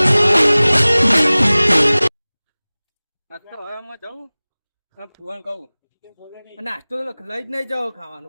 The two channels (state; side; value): inverted; both; correlation -1.00